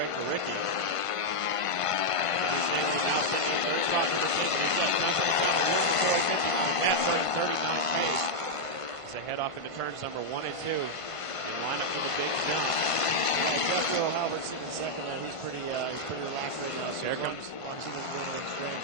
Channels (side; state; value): right; late; 1.5 ms